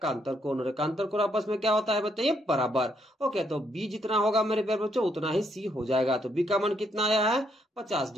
कोण। और एकांतर कोण आपस में क्या होता है बताइए, बराबर। ओके, तो B जितना होगा मेरे प्यारे बच्चों उतना ही C हो जाएगा। तो B का मान कितना आया है 50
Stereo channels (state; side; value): normal; both; correlation 0.74